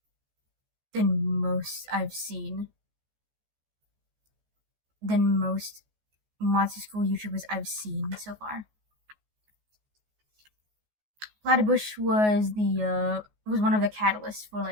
seen. Than most Monster School YouTubers I've seen so far. Platybush was one of the catalysts for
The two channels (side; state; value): left; late; 14 ms